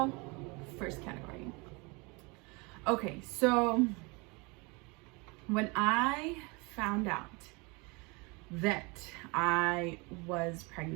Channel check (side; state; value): left; quieter; 28.2 dB